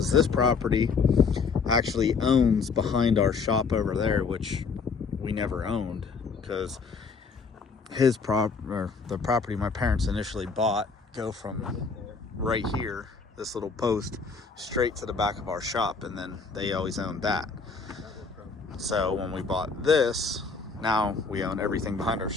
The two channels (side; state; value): right; quieter; 4.9 dB